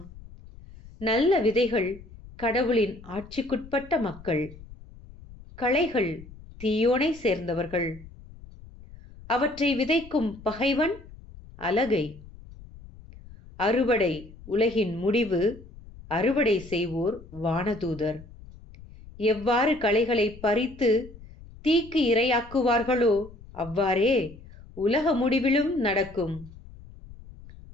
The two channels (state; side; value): noise; left; rumble, 19 dB below the sound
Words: நல்ல விதைகள் கடவுளின் ஆட்சிக்குட்பட்ட மக்கள். களைகள் தீயோனை சேர்ந்தவர்கள். அவற்றை விதைக்கும் பகைவன் அலகை. அறுவடை உலகின் முடிவு. அறுவடை செய்வோர் வானதூதர். எவ்வாறு களைகளை பறித்து தீக்கு இரையாக்குவார்களோ அவ்வாறே உலக முடிவிலும் நடக்கும்.